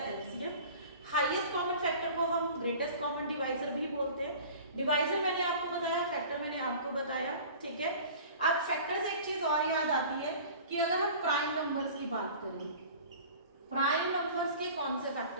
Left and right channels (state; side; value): inverted; both; correlation -0.42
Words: LCM. Highest common factor को हम ग्रेटेस्ट कॉमन डिवाइजर भी बोलते हैं। डिवाइजर मैंने आपको बताया, फैक्टर मैंने आपको बताया, ठीक है। अब फैक्टर से एक चीज और याद आती है कि अगर हम प्राइम नंबर्स की बात करें, प्राइम नंबर्स के कौन से